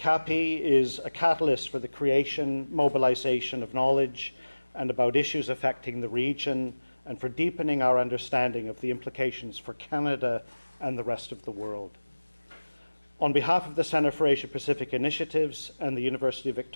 is a catalyst for the creation, mobilization of knowledge and about issues affecting the region, and for deepening our understanding of the implications for Canada and the rest of the world. On behalf of the Centre for Asia Pacific Initiatives and the University of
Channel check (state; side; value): inverted; both; correlation -1.00